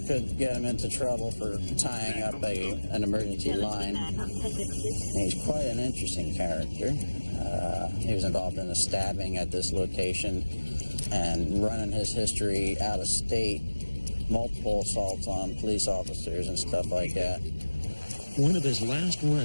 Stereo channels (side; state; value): both; inverted; correlation -1.00